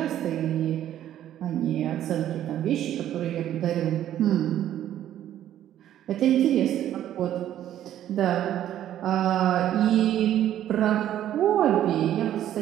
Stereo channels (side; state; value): left; quieter; 11.7 dB